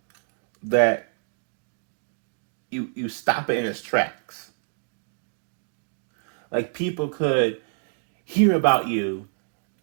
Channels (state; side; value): silent; left; digital silence